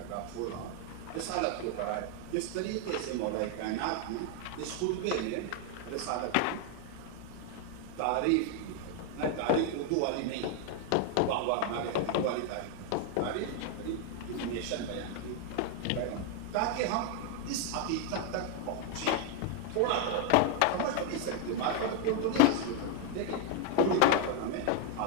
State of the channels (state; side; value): different; both; correlation 0.00